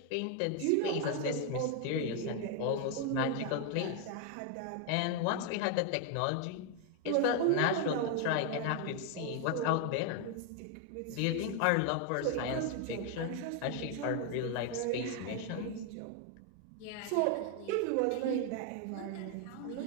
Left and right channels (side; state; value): both; different; correlation 0.01